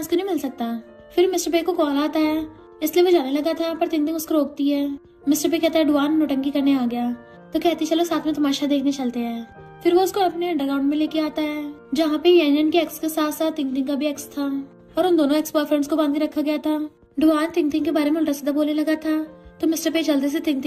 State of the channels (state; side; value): identical; both; correlation 1.00